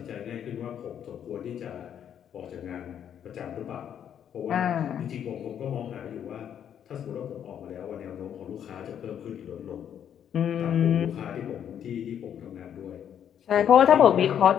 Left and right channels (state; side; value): quieter; right; 9.2 dB